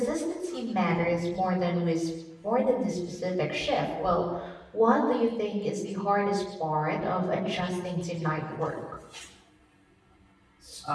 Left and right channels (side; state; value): both; identical; correlation 1.00